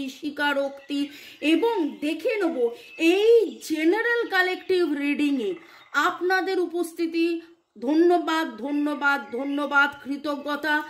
স্বীকারোক্তি এবং দেখে নেব এই জেনারেল কালেকটিভ রিডিংয়ে আপনাদের উপস্থিতি। ধন্যবাদ ধন্যবাদ ধন্যবাদ, কৃতজ্ঞতা,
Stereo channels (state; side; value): identical; both; correlation 1.00